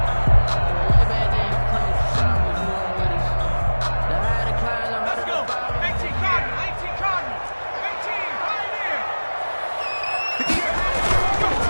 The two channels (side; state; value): both; inverted; correlation -1.00